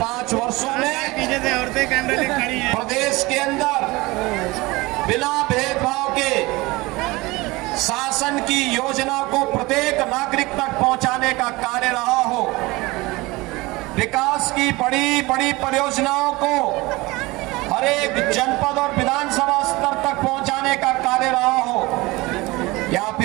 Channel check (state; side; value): quieter; left; 22.0 dB